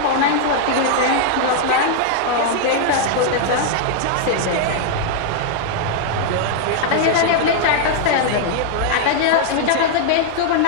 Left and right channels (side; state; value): both; different; correlation 0.00